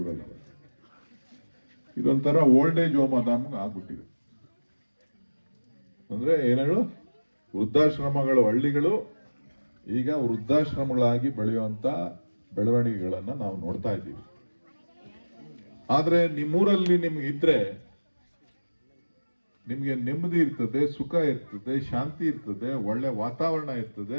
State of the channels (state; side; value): inverted; both; correlation -1.00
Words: ಇದೊಂಥರ ಓಲ್ಡ್ ಏಜ್ ಹೋಮ್ ಅದಾಮ್ಗೆ ಆಗ್ಬಿಟ್ಟಿದೆ. ಅಂದ್ರೆ ಏನೇಳು ವೃದ್ಧಾಶ್ರಮಗಳು, ಹಳ್ಳಿಗಳು ಈಗ ವೃದ್ಧಾಶ್ರಮಗಳಾಗಿ ಬೆಳೆಯುವಂತ ಬೆಳವಣಿಗೆಗಳನ್ನ ನಾವು ನೋಡ್ತಾ ಇದ್ದೀವಿ. ಆದ್ರೆ ನಿಮ್ಮೂರಲ್ಲಿ ನಿಮ್ಗೆ ಇದ್ರೆ ನಿಮ್ಗೆ ನೆಮ್ಮದಿ ಇರ್ತದೆ, ಸುಖ ಇರ್ತದೆ, ಶಾಂತಿ ಇರ್ತದೆ, ಒಳ್ಳೆ ವಾತಾವರಣ